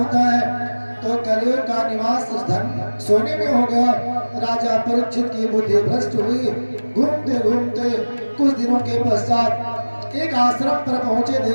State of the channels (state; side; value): inverted; both; correlation -1.00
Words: है। तो कलियुग का निवास धन सोने में हो गया। राजा परीक्षित की बुद्धि भ्रष्ट हुई। घूमते घूमते कुछ दिनों के पश्चात एक आश्रम पर पहुंचे,